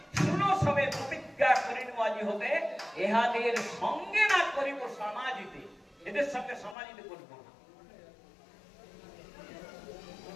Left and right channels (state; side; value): drops out; right; at 6.8 s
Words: শুনো সবে প্রতিজ্ঞা করিন আজি হতে, ইহাদের সঙ্গে না করিব সমাজিতে। এদের সঙ্গে সমাজিতে করিব না।